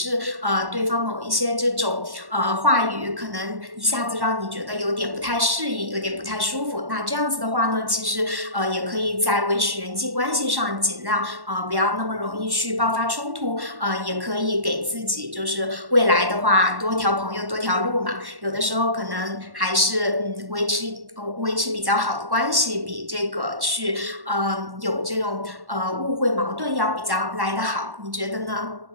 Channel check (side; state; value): left; late; 1.1 ms